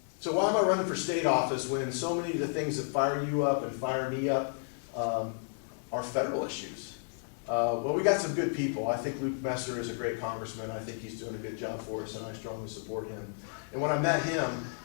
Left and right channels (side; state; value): right; silent; digital silence